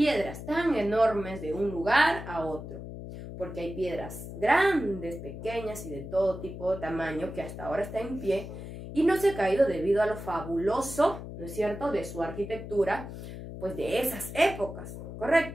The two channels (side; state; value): left; noise; hum, 10 dB below the sound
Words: tan enormes de un lugar a otro. Porque hay piedras grandes, pequeñas y de todo tipo de tamaño que hasta ahora está en pie y no se ha caído debido a lo fabuloso, ¿no es cierto?, de su arquitectura, pues de esas épocas,